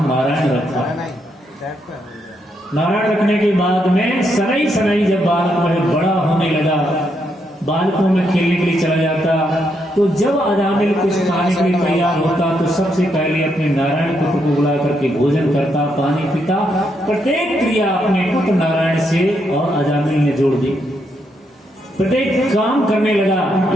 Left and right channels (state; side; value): normal; both; correlation 0.78